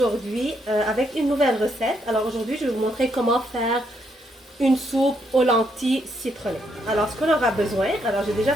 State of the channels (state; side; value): normal; both; correlation 0.75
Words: avec une nouvelle recette. Alors aujourd'hui je vais vous montrer comment faire une soupe aux lentilles citronnées. Alors ce qu'on aura besoin, alors j'ai déjà